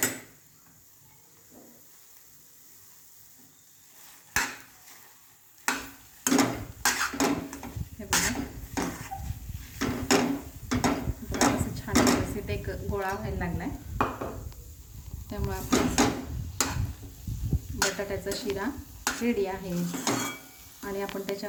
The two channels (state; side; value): identical; both; correlation 1.00